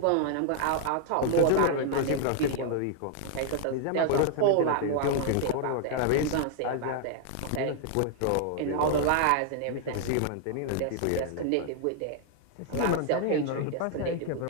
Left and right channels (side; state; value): both; different; correlation -0.01